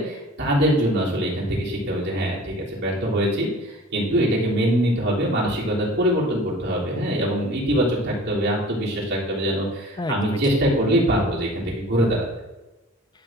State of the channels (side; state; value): both; normal; correlation 0.45